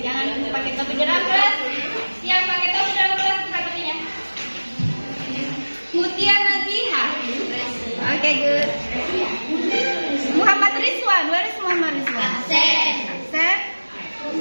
Jangan pakai topi dalam kelas. Yang pakai topi dalam kelas buka topinya. Mutia Naziha. Okay, good. Muhammad Rizwan. Where is Muhammad Rizwan? Absen.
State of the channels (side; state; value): both; inverted; correlation -1.00